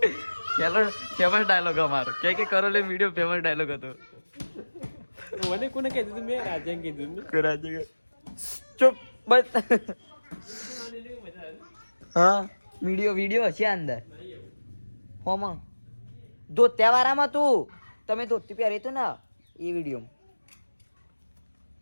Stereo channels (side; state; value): both; inverted; correlation -1.00